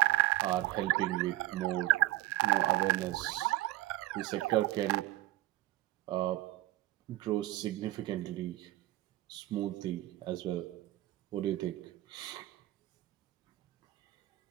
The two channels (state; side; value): quieter; left; 16.4 dB